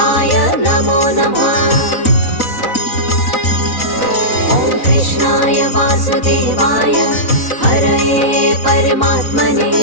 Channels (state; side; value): late; right; 3.9 ms